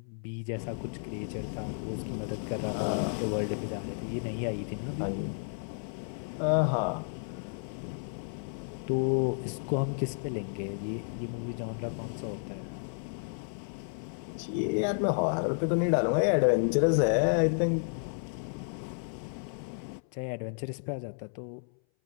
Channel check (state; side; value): silent; right; 56 dB below the other